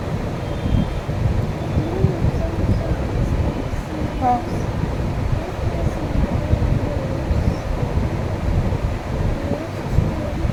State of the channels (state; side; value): identical; both; correlation 1.00